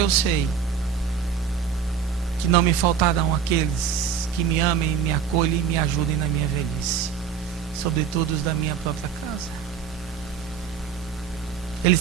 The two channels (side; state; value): left; quieter; 7.1 dB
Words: sei que não me faltarão aqueles que me amem, me acolhem e me ajudem na minha velhice, sobretudo os da minha própria casa. Ele